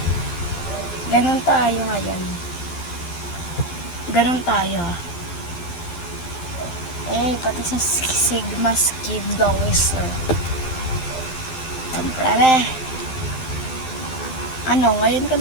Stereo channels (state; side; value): late; right; 12 ms